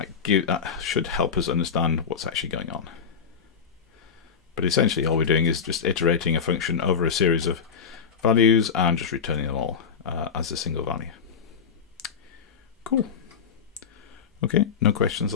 That should help us understand what's actually going on. But essentially all we're doing is just iterating a function over a series of values and just returning them all as a single value. Cool. Okay, no questions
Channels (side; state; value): right; quieter; 6.6 dB